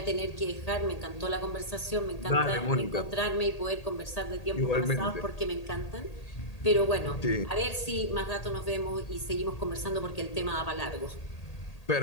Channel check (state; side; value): late; right; 1.8 ms